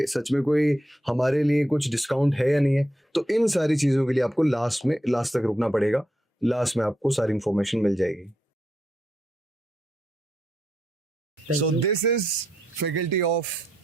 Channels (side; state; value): both; normal; correlation 0.81